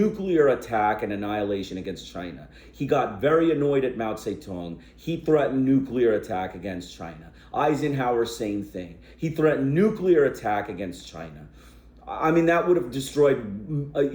attack and annihilation against China. He got very annoyed at Mao Zedong. He threatened nuclear attack against China. Eisenhower, same thing. He threatened nuclear attack against China. I mean, that would have destroyed,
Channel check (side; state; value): both; identical; correlation 1.00